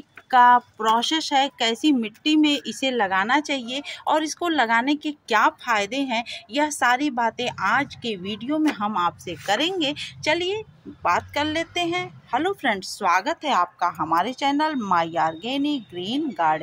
का प्रोसेस है, कैसी मिट्टी में इसे लगाना चाहिए और इसको लगाने के क्या फ़ायदे हैं, यह सारी बातें आज के वीडियो में हम आपसे करेंगे। चलिए बात कर लेते हैं। हेलो फ्रेंड्स, स्वागत है आपका हमारे channel my organic green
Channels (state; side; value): identical; both; correlation 1.00